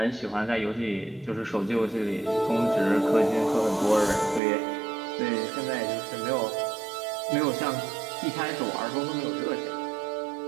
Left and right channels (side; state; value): left; drops out; at 4.4 s